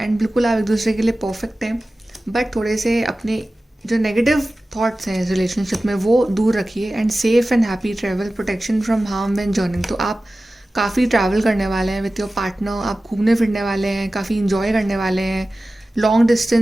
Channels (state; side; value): normal; both; correlation 0.96